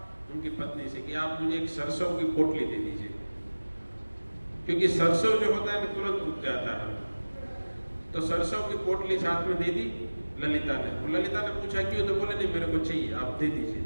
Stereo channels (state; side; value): inverted; both; correlation -1.00